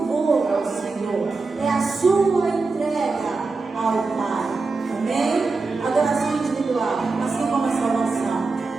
ao Senhor, é a sua entrega ao Pai, amém? Adoração individual, assim como a salvação.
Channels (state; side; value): quieter; left; 4.0 dB